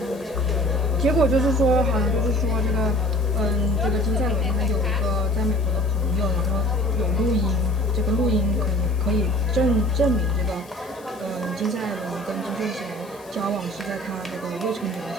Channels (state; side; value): noise; left; hiss, 25 dB below the sound